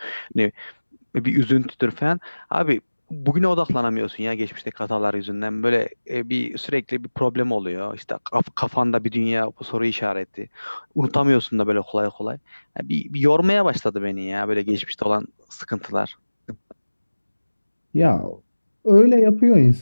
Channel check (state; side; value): inverted; both; correlation -1.00